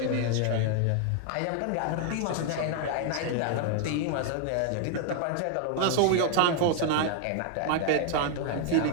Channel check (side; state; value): both; different; correlation 0.00